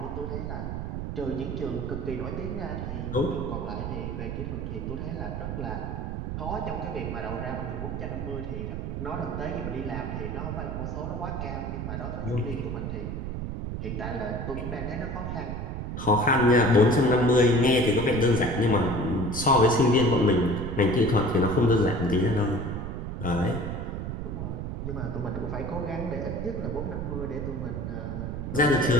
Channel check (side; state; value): right; noise; rumble, 4 dB below the sound